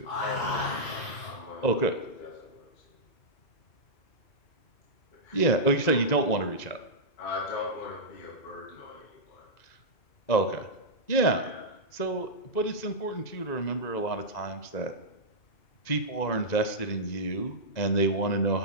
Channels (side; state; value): right; late; 2.0 ms